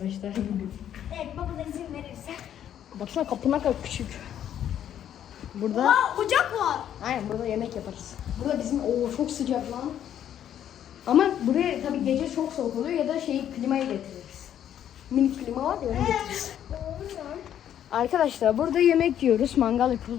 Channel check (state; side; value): quieter; right; 10.3 dB